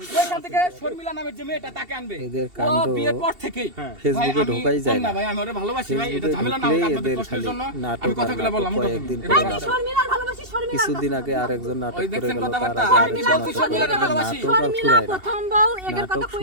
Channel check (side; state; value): left; late; 2.7 ms